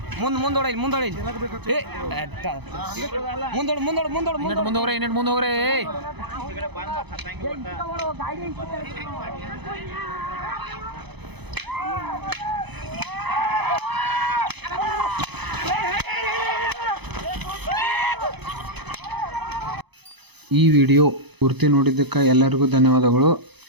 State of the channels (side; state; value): left; late; 0.99 ms